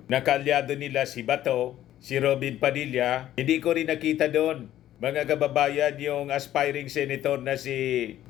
na kaalyado nila si Bato, si Robin Padilla, hindi ko rin nakita doon. Mga kababayan, yung aspiring senator na si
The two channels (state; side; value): quieter; right; 12.7 dB